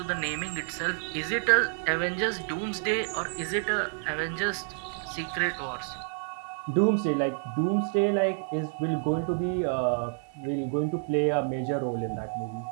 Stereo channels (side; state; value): left; silent; 59 dB below the other